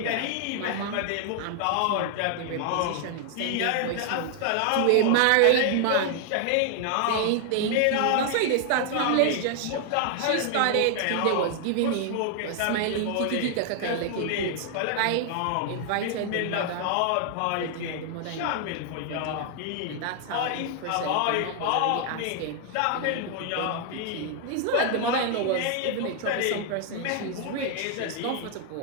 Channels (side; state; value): both; different; correlation 0.00